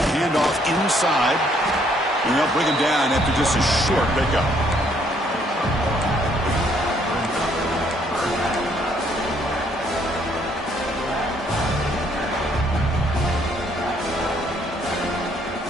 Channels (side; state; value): both; normal; correlation 0.67